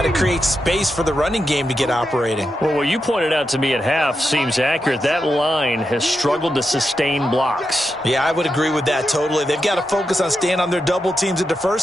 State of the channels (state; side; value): normal; both; correlation 0.87